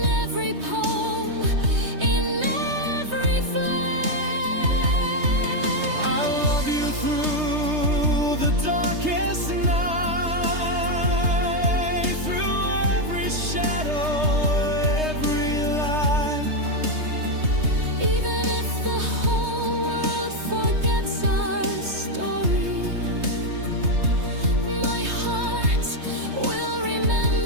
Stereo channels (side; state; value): left; late; 3.2 ms